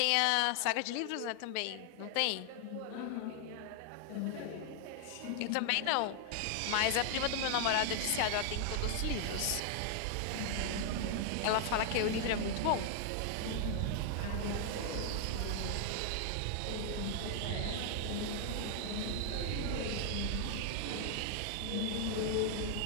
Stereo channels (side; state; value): both; different; correlation 0.00